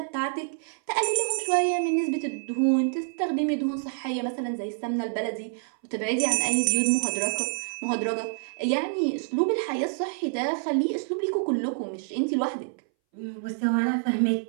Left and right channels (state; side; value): silent; left; 60 dB below the other